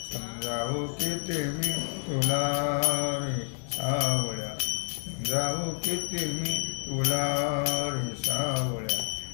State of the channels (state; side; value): silent; right; digital silence